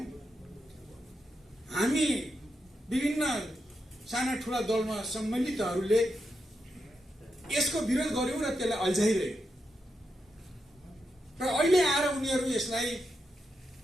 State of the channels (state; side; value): normal; both; correlation 0.85